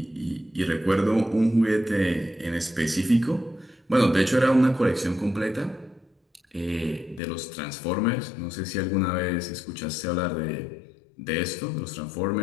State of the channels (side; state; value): right; drops out; at 7.2 s